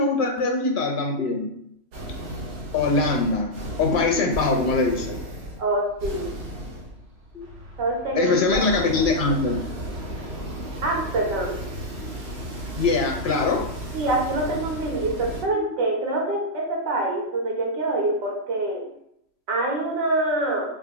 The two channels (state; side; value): late; left; 3.0 ms